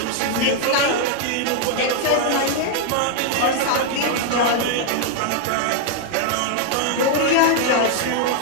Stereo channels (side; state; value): both; different; correlation 0.00